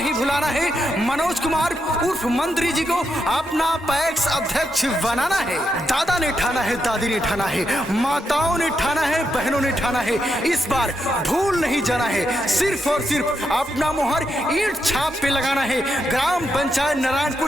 भुलाना है। मनोज कुमार उर्फ मंत्री जी को अपना पैक्स अध्यक्ष बनाना है। दादा ने ठाना है, दादी ने ठाना है, माताओं ने ठाना है, बहनों ने ठाना है, इस बार भूल नहीं जाना है। सिर्फ और सिर्फ अपना मोहर ईंट छाप पे लगाना है। ग्राम पंचायत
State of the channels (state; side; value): normal; both; correlation 0.83